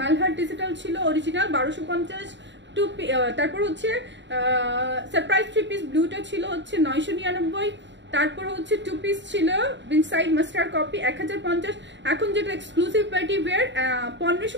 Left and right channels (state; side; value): late; left; 0.53 ms